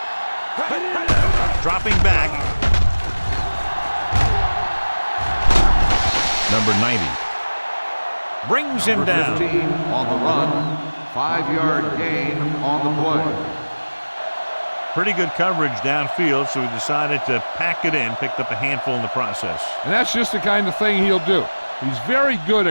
Dropping back. Number 90 brings him down. 15 on the run. 5-yard gain on the play. Pretty good coverage downfield, so he decided to pack it in, picked up a handful in the process. And that's just the kind of thing he'll do. He's very good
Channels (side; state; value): both; inverted; correlation -1.00